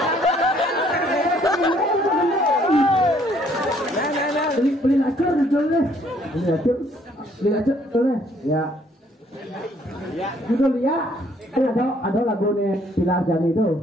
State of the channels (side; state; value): both; normal; correlation 0.64